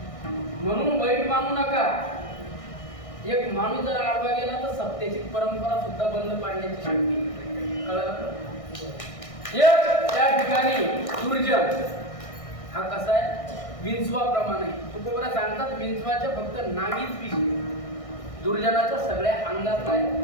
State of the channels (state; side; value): late; right; 1.6 ms